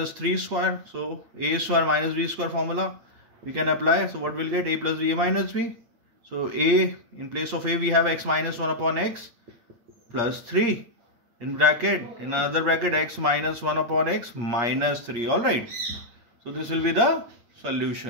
3 square. So a square minus b square formula we can apply. So what we'll get? A plus b a minus b. So a, in place of a we have x minus 1 upon x plus 3. In another bracket x minus 1 upon x minus 3. Alright. So this will be the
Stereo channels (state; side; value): late; left; 8.5 ms